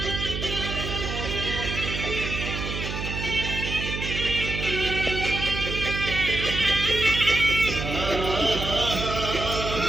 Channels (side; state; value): right; noise; hum, 5 dB below the sound